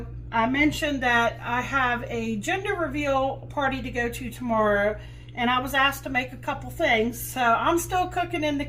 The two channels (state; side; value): identical; both; correlation 1.00